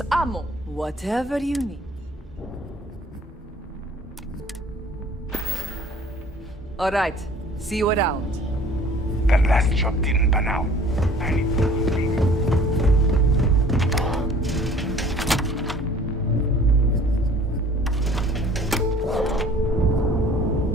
ammo, whatever you need. All right, see you around. That last job didn't pan out. I need to think.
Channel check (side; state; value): both; normal; correlation 0.51